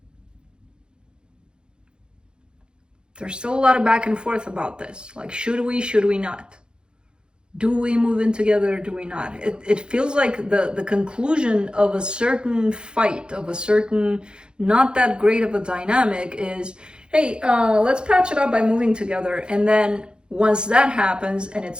There's still a lot of back and forth about this. Like, should we not? Do we move in together? Do we not? It feels like the conclusion of a certain fight, of a certain not that great of a dynamic is, hey, let's patch it up by moving together. And then once that happens and it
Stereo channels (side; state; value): left; late; 0.050 ms